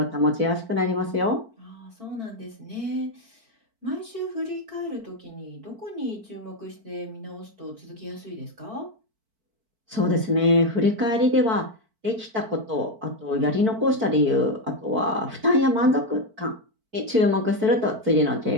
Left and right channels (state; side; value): late; left; 4.5 ms